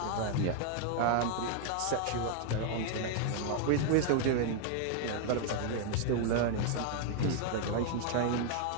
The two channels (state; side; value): different; both; correlation 0.00